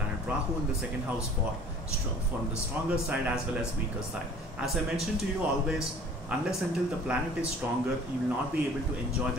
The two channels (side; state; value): both; normal; correlation 0.49